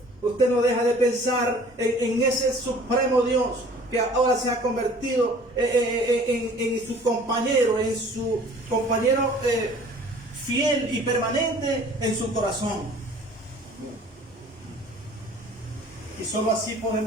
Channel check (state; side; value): normal; both; correlation 0.50